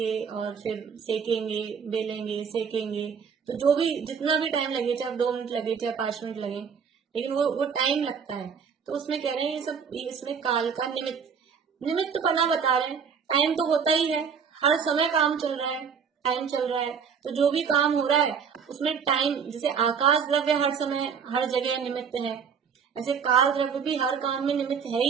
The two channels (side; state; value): left; quieter; 6.6 dB